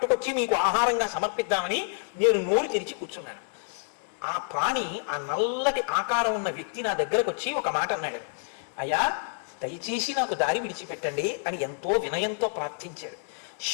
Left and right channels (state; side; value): silent; right; 59 dB below the other